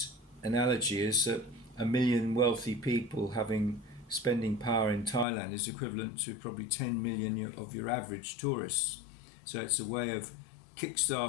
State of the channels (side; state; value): right; drops out; at 5.2 s